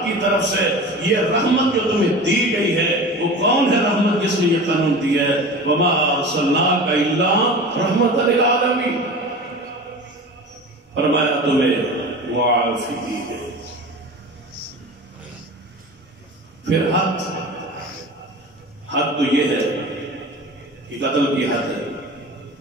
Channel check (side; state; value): both; normal; correlation 0.34